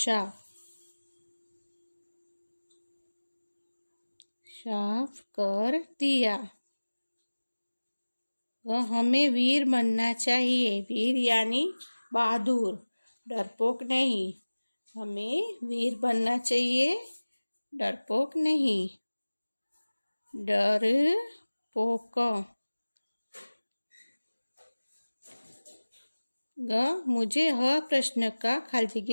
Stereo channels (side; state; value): both; inverted; correlation -1.00